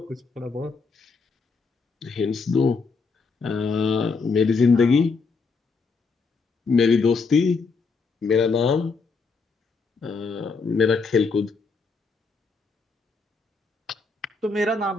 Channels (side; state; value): right; quieter; 4.5 dB